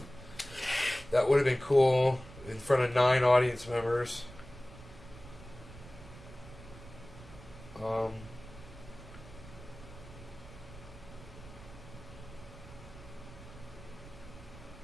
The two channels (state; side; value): noise; right; rumble, 16 dB below the sound